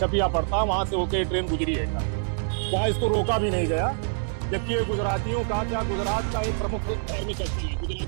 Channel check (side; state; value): left; silent; 61 dB below the other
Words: पड़ता, वहाँ से होकर ट्रेन गुजरी है, वहाँ इसको रोका भी नहीं गया, जबकि ये गुजरातियों का क्या गुजरात का एक प्रमुख धार्मिक स्थल है,